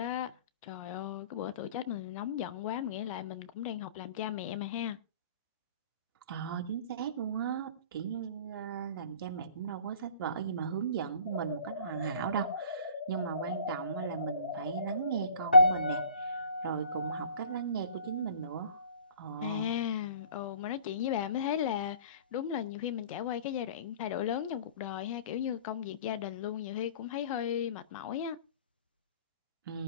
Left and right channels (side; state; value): both; inverted; correlation -0.48